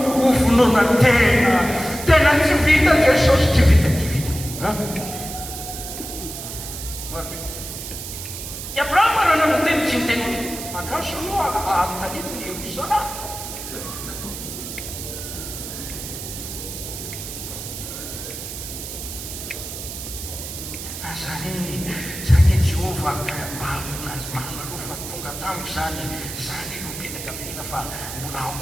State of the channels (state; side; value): noise; right; hiss, 9 dB below the sound